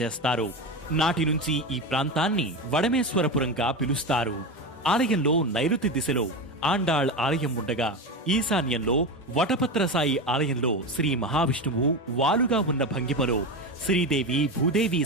చేస్తారు. నాటి నుంచి ఈ ప్రాంతాన్ని వడమేశ్వరపురంగా పిలుస్తారు. ఆలయంలో నైరుతి దిశలో ఆండాళ్ ఆలయం ఉండగా, ఈశాన్యంలో వటపత్రసాయి ఆలయంలో శ్రీ మహావిష్ణువు వాలుగా ఉన్న భంగిమలో శ్రీదేవి, భూదేవి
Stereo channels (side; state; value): both; normal; correlation 0.19